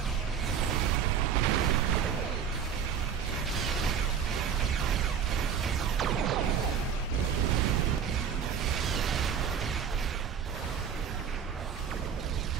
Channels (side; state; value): left; quieter; 7.4 dB